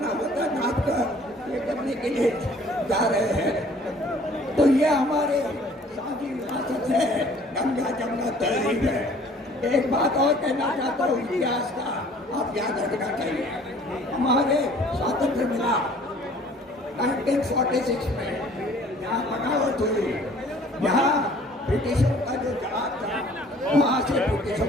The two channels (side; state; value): both; normal; correlation 0.54